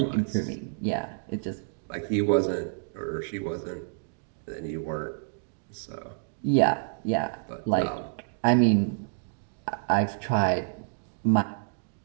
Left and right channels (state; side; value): silent; left; digital silence